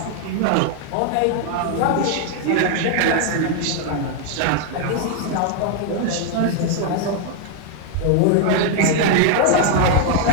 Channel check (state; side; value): different; both; correlation 0.00